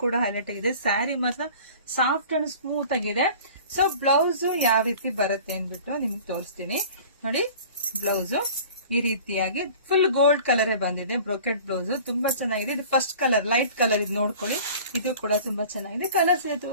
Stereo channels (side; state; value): both; inverted; correlation -0.44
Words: ಕೂಡ ಹೈಲೈಟ್ ಆಗಿದೆ. ಸ್ಯಾರಿ ಮಾತ್ರ ಸಾಫ್ಟ್ ಅಂಡ್ ಸ್ಮೂತ್ ಆಗಿದೆ. ಸೊ ಬ್ಲೌಸ್ ಯಾವ ರೀತಿ ಬರುತ್ತೆ ಅಂದ್ಬಿಟ್ಟು ನಿಮ್ಗೆ ತೋರಿಸ್ತೀನಿ ನೋಡಿ. ಬ್ಲೌಸ್ ಈ ರೀತಿಯಾಗಿ ಫುಲ್ ಗೋಲ್ಡ್ ಕಲರ್ ಬಂದಿದೆ. ಬ್ರೋಕೆಟ್ ಬ್ಲೌಸ್ ತುಂಬಾ ಚೆನ್ನಾಗಿದೆ. ಇದು ಫಸ್ಟ್ ಕಲರ್, ಲೈಟ್ ಕಲರ್, ಇದು ನೋಡ್ಕೊಳ್ಳಿ. ಇದು ಕೂಡ ತುಂಬಾ ಚೆನ್ನಾಗಿದೆ. ಕಲರ್ಸ್